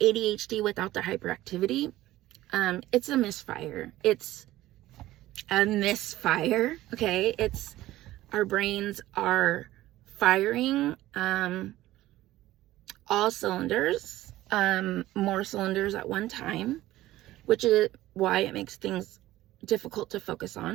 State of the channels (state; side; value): quieter; left; 15.8 dB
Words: ADHD without the hyperactivity. It's a misfire. Okay? It's our brains are firing all cylinders, more cylinders at one time, which is why it makes things difficult to focus